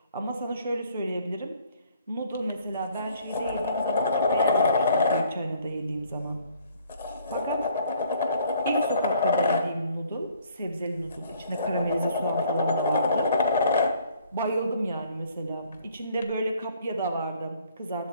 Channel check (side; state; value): both; inverted; correlation -0.61